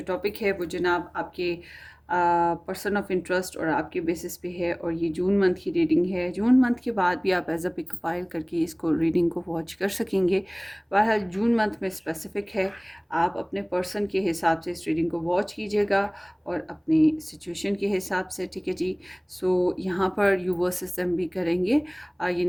टॉपिक है वो जनाब आपके पर्सन ऑफ इंटरेस्ट और आपके बेसिस पे है, और ये जून मंथ की रीडिंग है। जून मंथ के बाद भी आप एज अ पिक फाइल करके इसको रीडिंग को वॉच कर सकेंगे। बहरहाल जून मंथ में स्पेसिफिक है, आप अपने पर्सन के हिसाब से इस रीडिंग को वॉच कीजिएगा और अपनी सिचुएशन के हिसाब से, ठीक है जी। सो यहाँ पर यू वर्सेस देम भी करेंगे,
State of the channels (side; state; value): both; identical; correlation 1.00